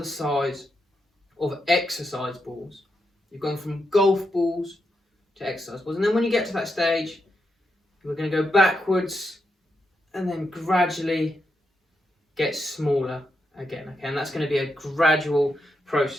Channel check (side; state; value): both; normal; correlation 0.84